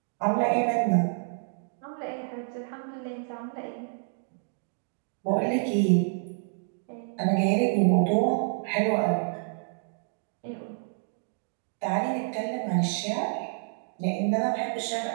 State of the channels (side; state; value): left; silent; digital silence